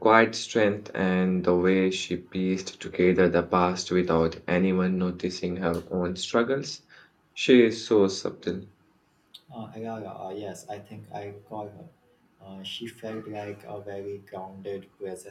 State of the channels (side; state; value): both; identical; correlation 1.00